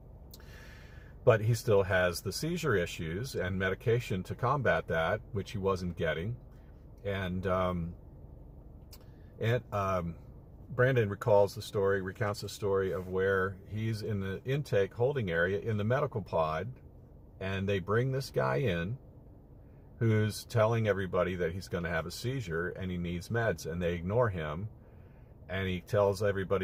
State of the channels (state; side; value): identical; both; correlation 1.00